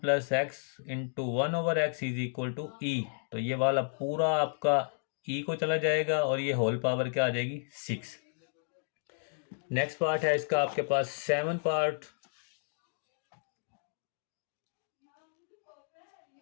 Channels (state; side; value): silent; right; digital silence